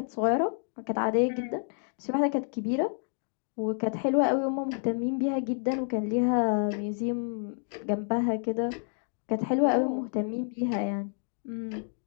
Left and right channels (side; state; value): right; silent; 58 dB below the other